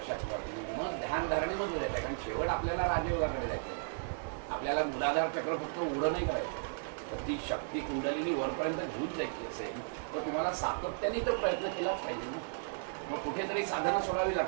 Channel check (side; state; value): left; silent; digital silence